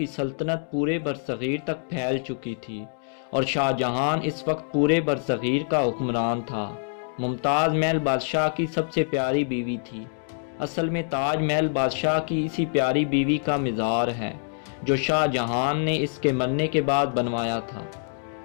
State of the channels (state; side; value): silent; right; digital silence